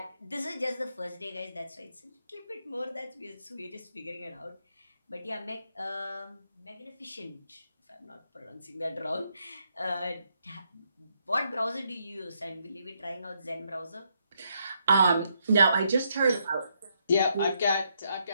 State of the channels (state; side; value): inverted; both; correlation -0.77